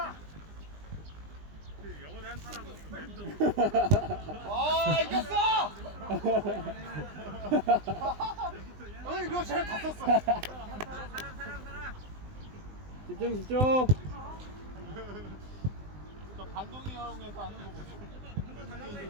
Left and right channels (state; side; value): late; left; 20 ms